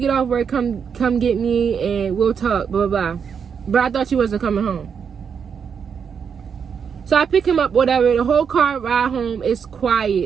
off work, come get me and we'll talk, blah, blah, blah. But I thought you wasn't coming home. So I pick him up, whatever. The whole car ride home is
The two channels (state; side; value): quieter; left; 6.8 dB